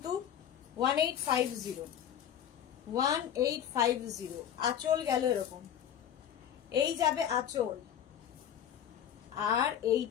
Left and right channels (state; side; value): quieter; right; 9.8 dB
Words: 1850। 1850। আঁচল গেল এরকম, এই যাবে আঁচল, আর